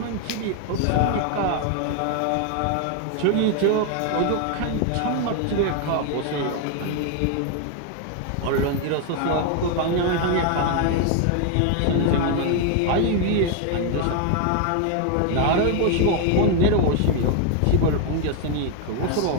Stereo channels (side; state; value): both; different; correlation 0.01